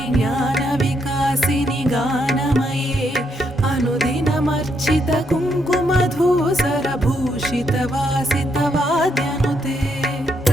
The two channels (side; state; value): both; normal; correlation 0.77